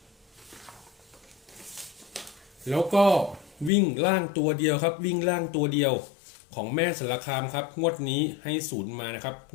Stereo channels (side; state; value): right; drops out; at 3.7 s